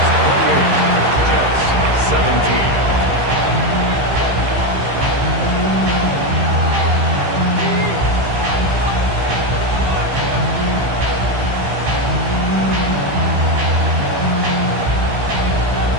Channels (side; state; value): left; late; 15 ms